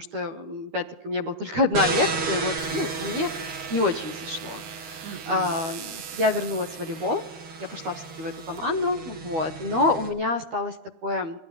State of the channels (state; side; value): late; left; 12 ms